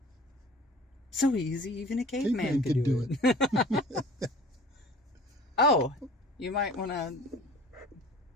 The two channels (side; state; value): both; normal; correlation 0.45